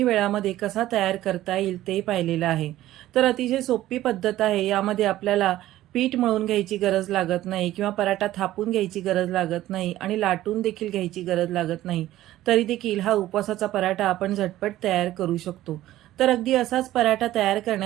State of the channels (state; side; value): quieter; left; 14.6 dB